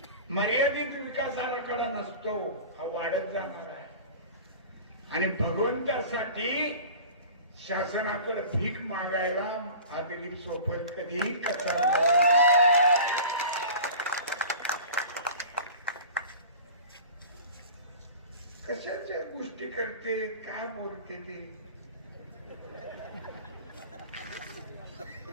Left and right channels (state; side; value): inverted; both; correlation -0.39